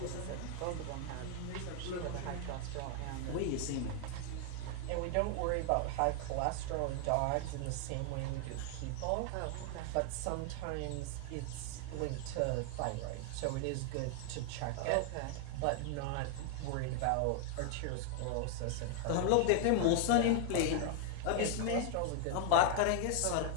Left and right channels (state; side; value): different; both; correlation 0.00